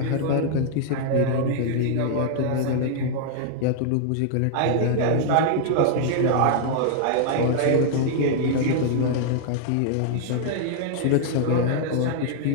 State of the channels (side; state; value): both; different; correlation -0.01